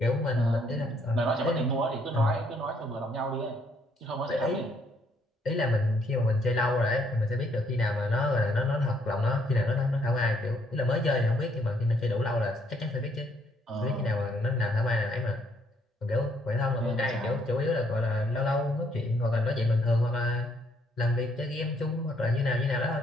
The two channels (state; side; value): normal; both; correlation 0.69